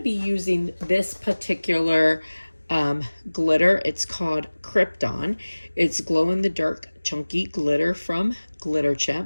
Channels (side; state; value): both; inverted; correlation -1.00